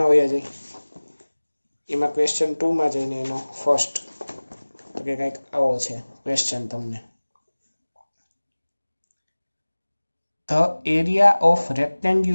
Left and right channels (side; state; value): both; inverted; correlation -1.00